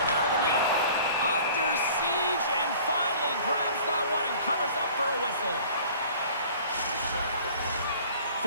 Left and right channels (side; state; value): both; inverted; correlation -0.48